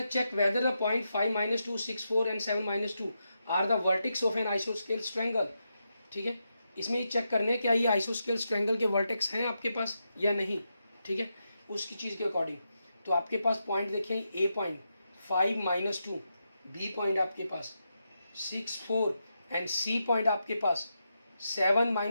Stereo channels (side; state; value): both; inverted; correlation -0.85